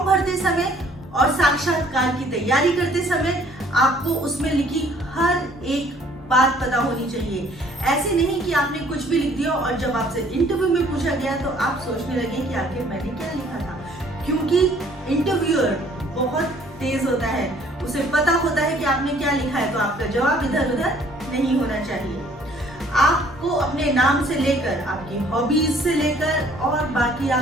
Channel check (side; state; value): both; normal; correlation 0.58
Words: भरते समय और साक्षात्कार की तैयारी करते समय आपको उसमें लिखी हर एक बात पता होनी चाहिए। ऐसे नहीं कि आपने कुछ भी लिख दिया और जब आपसे इंटरव्यू में पूछा गया तो आप सोचने लगे कि आखिर मैंने क्या लिखा था, क्योंकि इंटरव्यूअर बहुत तेज होता है, उसे पता होता है कि आपने क्या लिखा है, तो आपका जवाब इधर उधर नहीं होना चाहिए। आपको अपने नाम से लेकर, आपकी हॉबीज से लेकर और बाकी